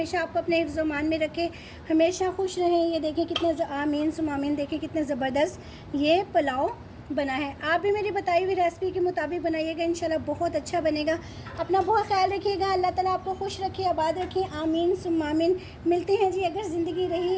आपको अपने हिफ्ज़ मान में रखे, हमेशा खुश रहें। ये देखें कितने आमीन सुमामीन, देखें कितने ज़बरदस्त ये पुलाव बना है। आप भी मेरी बताई हुई रेसिपी के मुताबिक बनाइएगा, इंशाल्लाह बहुत अच्छा बनेगा। अपना बहुत ख्याल रखिएगा, अल्लाह ताला आपको खुश रखे, आबाद रखे, आमीन सुमामीन। मिलते हैं जी अगर ज़िंदगी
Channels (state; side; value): identical; both; correlation 1.00